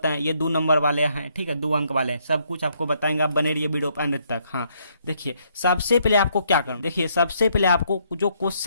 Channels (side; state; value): both; inverted; correlation -0.71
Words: हैं, ये 2 नंबर वाले हैं। ठीक है, 2 अंक वाले हैं, सब कुछ आपको बताएंगे। आप बने रहिए वीडियो एंड तक। हाँ, देखिए, सबसे पहले आपको क्या करना, देखिए सबसे पहले आपको जो